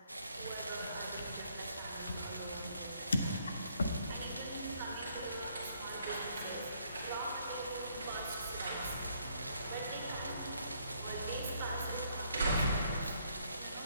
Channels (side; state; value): both; inverted; correlation -0.69